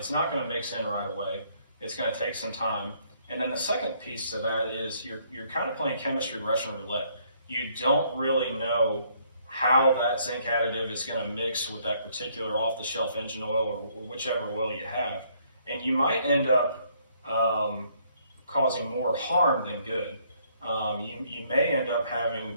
not going to mix in right away. It's going to take some time. And then the second piece to that is you're kind of playing chemistry Russian roulette. You don't really know how that zinc additive is going to mix with that particular off-the-shelf engine oil or whichever oil you have. And you might end up causing more harm than good. You may end up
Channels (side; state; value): both; inverted; correlation -0.67